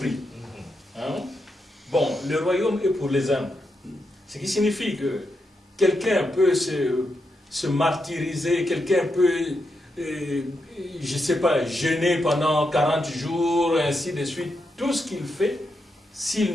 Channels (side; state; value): both; normal; correlation 0.84